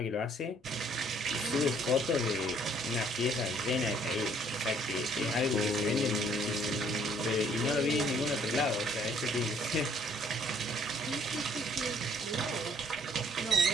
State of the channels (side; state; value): both; normal; correlation 0.62